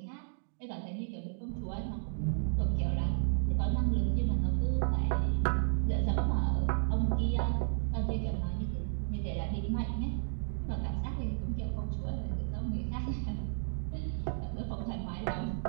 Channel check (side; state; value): left; silent; digital silence